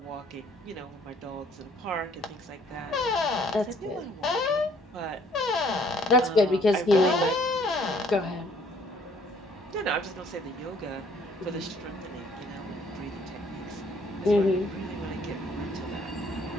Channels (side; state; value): both; normal; correlation 0.61